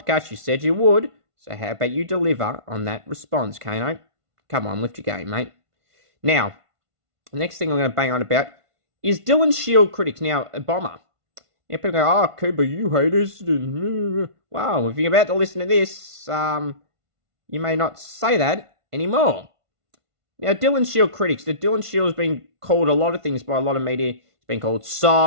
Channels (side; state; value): left; late; 1.5 ms